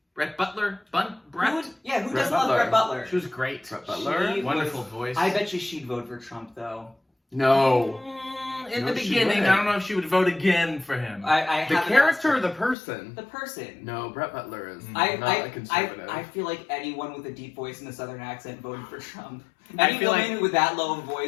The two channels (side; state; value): right; drops out; at 12.8 s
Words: Brett Butler. Brett? Who Brett doesn't Brett love Butler. Brett Butler? She was great. Brett Butler. She- Wonderful was- voice. I bet you she'd vote for Trump, though. No. In No, the she beginning, wouldn't. I don't know if she would vote again for him. I The haven't character or asked the person? her. The person. No, Brett Butler is I not a conservative. I feel like anyone with a deep voice and a southern accent voted for Trump. I Any feel woman like- with that low of a